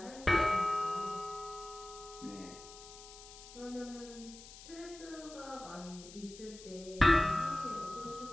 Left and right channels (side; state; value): left; noise; hiss, 16 dB below the sound